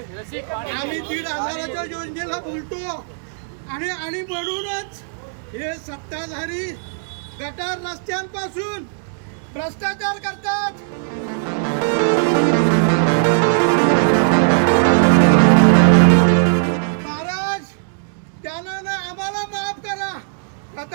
आम्ही 1,500च्या योजनेला बोलतो आणि म्हणूनच हे सत्ताधारी गटार रस्त्यांपासून भ्रष्टाचार करतात. महाराज, त्यानं आम्हाला माफ करा.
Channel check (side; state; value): left; silent; digital silence